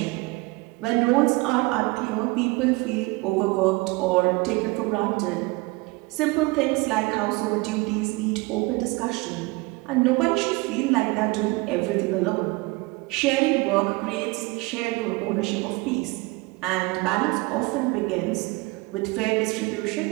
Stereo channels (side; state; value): left; quieter; 24.3 dB